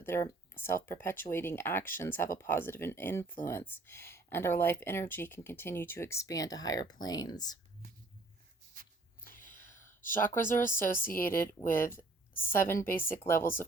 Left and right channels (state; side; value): quieter; left; 3.2 dB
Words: their self perpetuating actions have a positive influence and our life energy can continue to expand to higher planes. Chakras are associated with 7 basic levels